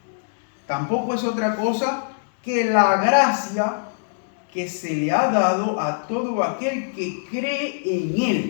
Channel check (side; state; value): right; silent; digital silence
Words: Tampoco es otra cosa que la gracia que se le ha dado a todo aquel que cree en